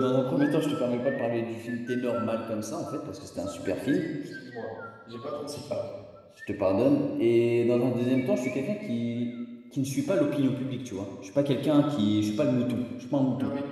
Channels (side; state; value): both; identical; correlation 1.00